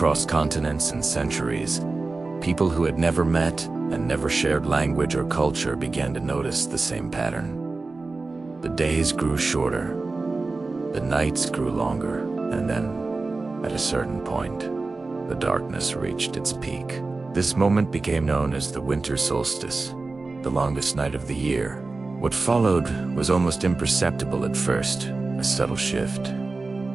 continents and centuries, people who had never met and never shared language or culture began to notice the same pattern. The days grew shorter, the nights grew longer, and then, at a certain point, the darkness reached its peak. This moment became known as the winter solstice, the longest night of the year. What followed was almost imperceptible at first, a subtle shift,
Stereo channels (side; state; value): left; quieter; 3.6 dB